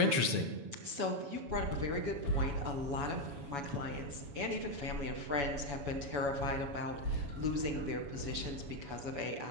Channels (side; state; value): left; late; 7.1 ms